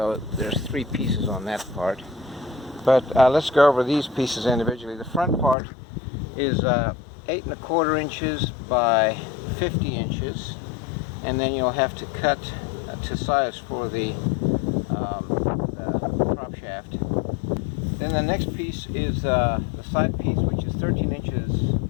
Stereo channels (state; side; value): drops out; right; at 5.6 s